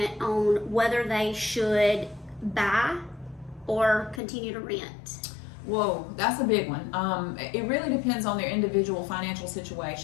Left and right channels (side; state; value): right; drops out; at 4.2 s